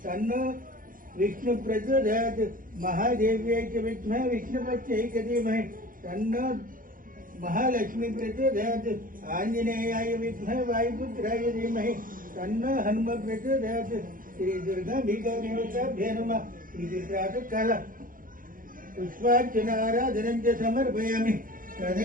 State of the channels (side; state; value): left; late; 0.40 ms